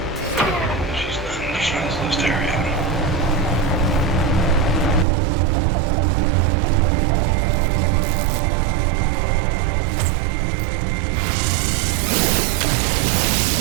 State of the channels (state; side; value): drops out; left; at 5.1 s